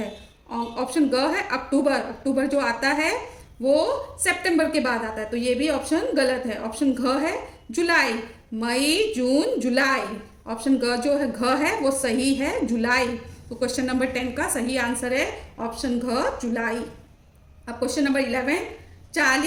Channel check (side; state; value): both; identical; correlation 1.00